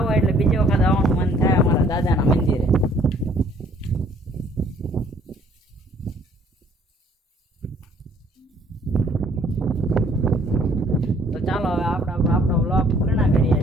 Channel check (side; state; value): both; normal; correlation 0.60